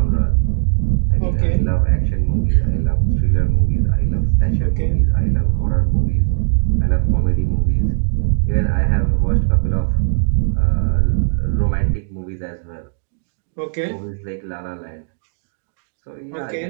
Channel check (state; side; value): silent; left; digital silence